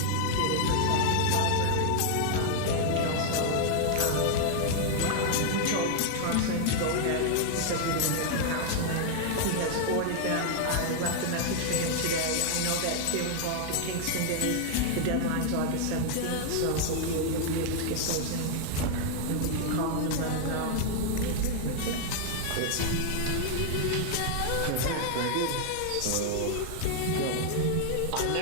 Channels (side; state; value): both; different; correlation 0.00